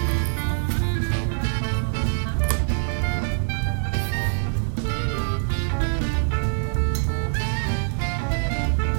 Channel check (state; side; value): silent; left; 57 dB below the other